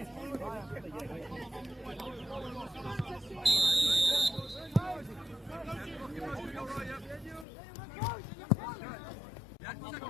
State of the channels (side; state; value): right; drops out; at 7.5 s